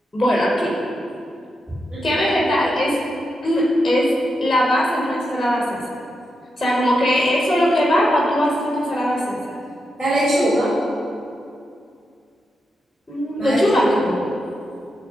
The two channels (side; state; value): both; normal; correlation 0.85